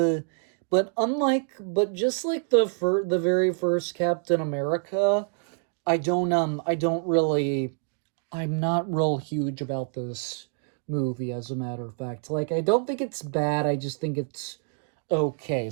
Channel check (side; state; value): left; silent; 60 dB below the other